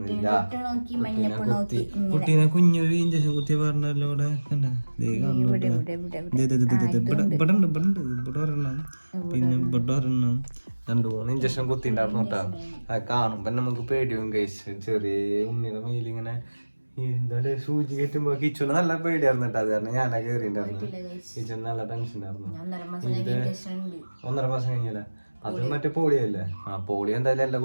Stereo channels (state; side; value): inverted; both; correlation -1.00